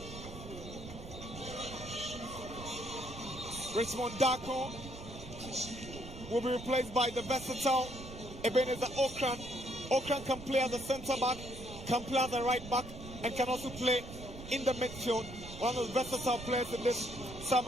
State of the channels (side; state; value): right; noise; rumble, 12 dB below the sound